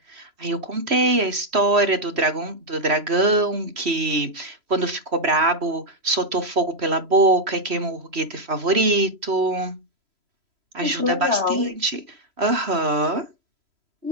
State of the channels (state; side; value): late; left; 3.1 ms